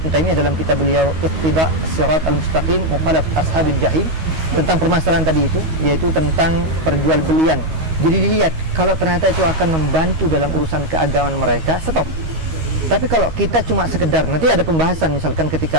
Taimiyah dalam kitab beliau Iqtida' Sirat Al-Mustaqim Mukhalaf Ashabil Jahim, tentang permasalahan tadi itu, yaitu tentang perjualbelian. Jadi dilihat, kalau ternyata itu akan membantu dalam urusan keagamaan mereka, stop. Tapi kalau kita cuma sekedar, nanti ada pembahasan misalkan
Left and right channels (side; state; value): left; late; 13 ms